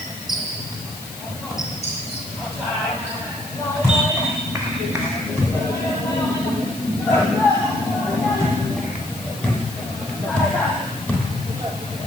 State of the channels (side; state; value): left; noise; hiss, 14 dB below the sound